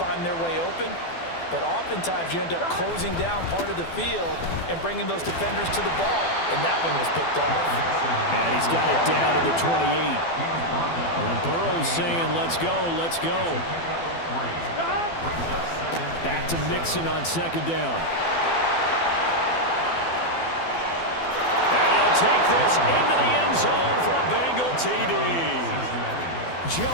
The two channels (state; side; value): late; right; 12 ms